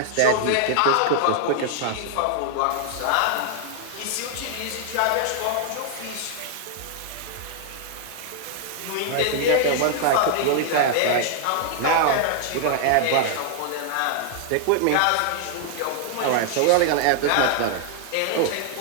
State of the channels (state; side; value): different; both; correlation -0.01